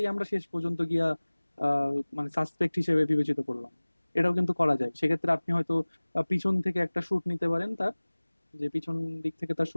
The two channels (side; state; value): both; inverted; correlation -1.00